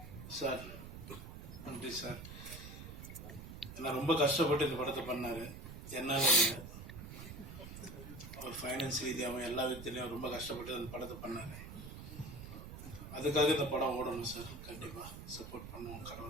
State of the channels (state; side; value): noise; right; rumble, 11 dB below the sound